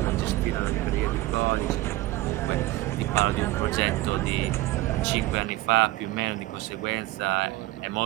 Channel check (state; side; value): quieter; left; 17.9 dB